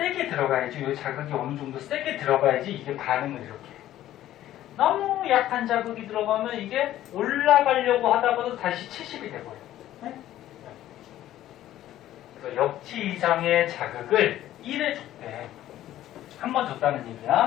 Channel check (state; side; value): quieter; right; 13.3 dB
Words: 들어가야지, 이 자극이 어느 정도 세게 들어가야지 이게 반응을 이렇게. 너무 약한 자극이 들어가면 이게 올라가려고 하다가도 다시 70이 돼버려요. 네? 그래서 역치 이상의 자극을 1회 줬대. 한 번 줬다는